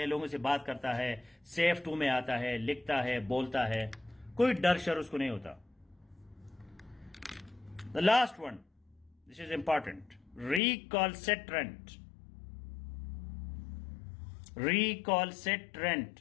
लोगों से बात करता है, सेफ टू में आता है, लिखता है, बोलता है, कोई डर शर उसको नहीं होता। The last one, this is important. Recalcitrant. Recalcitrant.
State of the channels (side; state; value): right; drops out; at 10.6 s